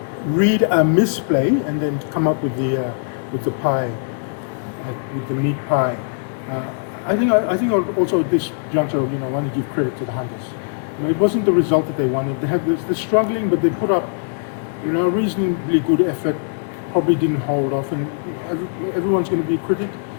read a misplay and then come up with the pie, with the meat pie. I think also at this juncture, want to give credit to the Hunters. It wasn't the result that they wanted. They're struggling, but they put up, a reasonably good effort. Probably didn't hold off, and everyone's going to be a critic.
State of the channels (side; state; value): right; silent; digital silence